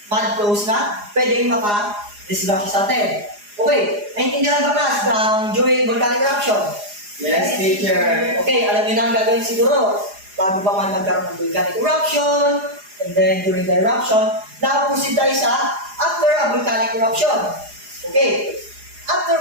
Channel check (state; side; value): late; left; 4.8 ms